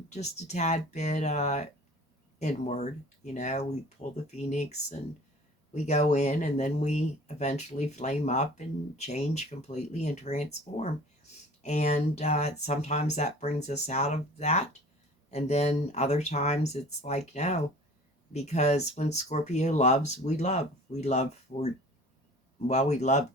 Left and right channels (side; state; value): both; normal; correlation 0.45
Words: just a tad bit inward. We pull the phoenix and we go in, and then we eventually flame up and change completely and transform. And sometimes that brings us out of that. And then other times it's like, no, because when Scorpio loves, we love. We love for, well, we love